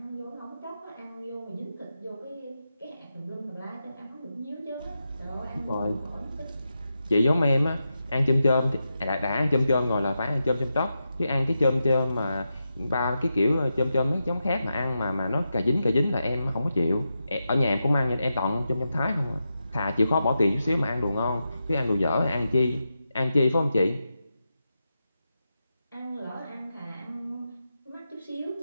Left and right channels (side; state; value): both; inverted; correlation -0.88